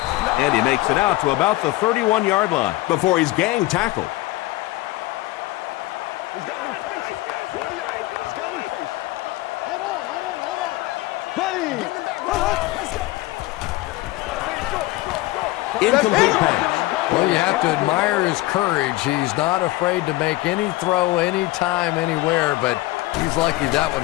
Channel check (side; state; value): right; quieter; 19.0 dB